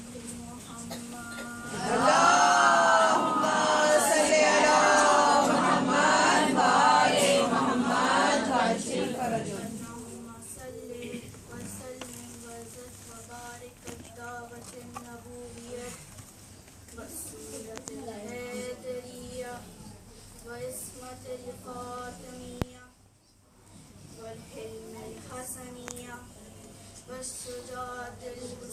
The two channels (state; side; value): identical; both; correlation 1.00